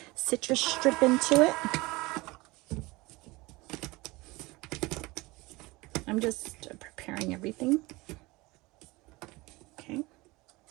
citrus strip into it. I'm just preparing everything. Okay.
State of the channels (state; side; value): quieter; left; 22.3 dB